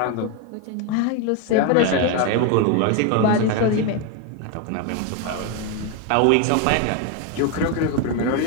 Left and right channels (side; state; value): both; different; correlation 0.02